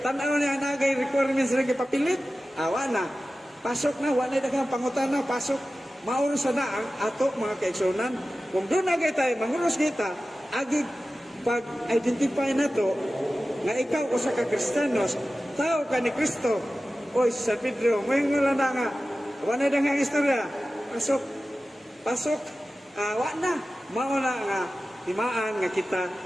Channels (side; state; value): both; normal; correlation 0.95